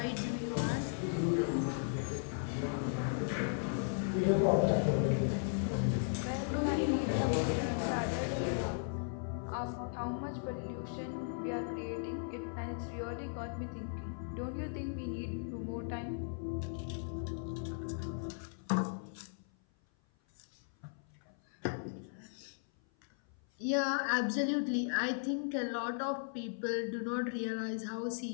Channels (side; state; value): right; silent; 53 dB below the other